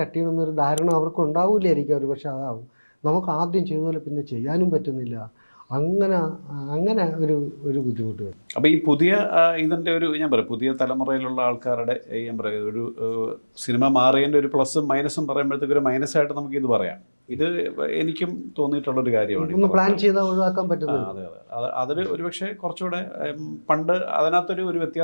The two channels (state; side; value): inverted; both; correlation -1.00